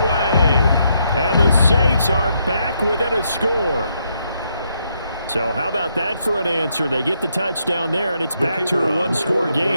And the Saints are back within a score. So how about that for an answer? They get the touchdown there, and it's back to a one-score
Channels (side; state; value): both; inverted; correlation -0.77